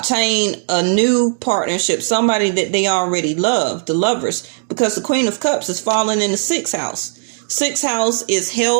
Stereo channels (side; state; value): left; silent; digital silence